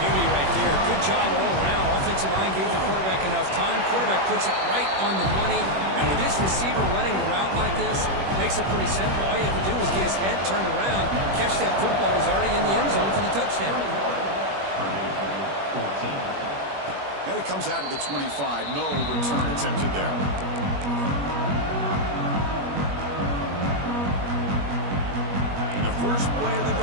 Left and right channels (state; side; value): late; left; 21 ms